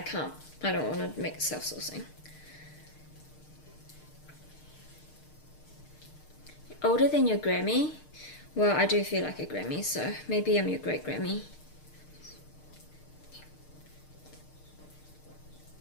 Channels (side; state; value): right; late; 6.6 ms